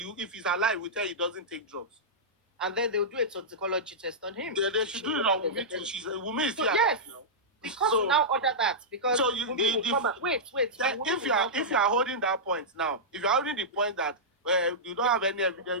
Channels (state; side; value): normal; both; correlation -0.12